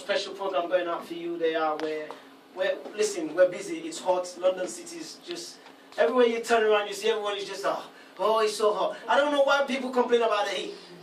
program going out for you. They are listen, we're busy. It's hot. London City is just everywhere you turn around, you see everyone is just oh, it's so hot. I don't know why people complain about the heat.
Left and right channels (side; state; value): both; identical; correlation 1.00